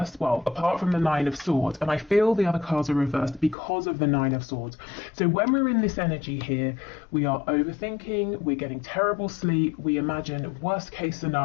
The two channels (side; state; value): right; drops out; at 3.6 s